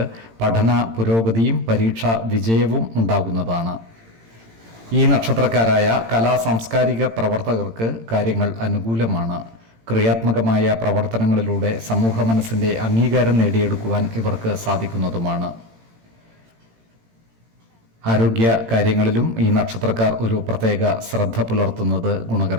പഠന പുരോഗതിയും പരീക്ഷാ വിജയവും ഉണ്ടാകുന്നതാണ്. ഈ നക്ഷത്രക്കാരായ കലാ സാംസ്കാരിക പ്രവർത്തകർക്ക് കാര്യങ്ങൾ അനുകൂലമാണ്. ക്രിയാത്മകമായ പ്രവർത്തനങ്ങളിലൂടെ സമൂഹ മനസ്സിൻ്റെ അംഗീകാരം നേടിയെടുക്കുവാൻ ഇവർക്ക് സാധിക്കുന്നതുമാണ്. ആരോഗ്യ കാര്യങ്ങളിലും ഈ നക്ഷത്രക്കാർ ഒരു പ്രത്യേക ശ്രദ്ധ പുലർത്തുന്നത്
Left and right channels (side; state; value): left; late; 18 ms